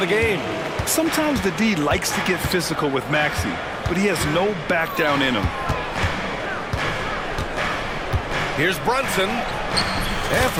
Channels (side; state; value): both; identical; correlation 1.00